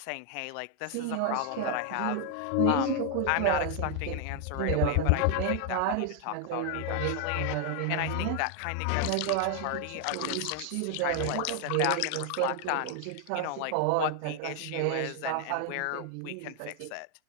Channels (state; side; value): different; both; correlation 0.00